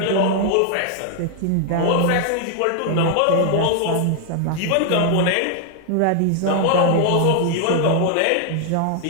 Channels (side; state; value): both; different; correlation 0.00